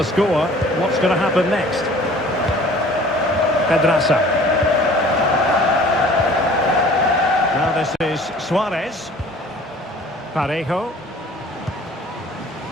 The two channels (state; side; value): normal; both; correlation 0.49